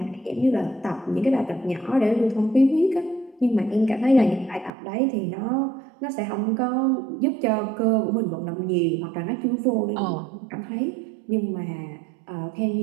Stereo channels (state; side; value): drops out; left; at 4.7 s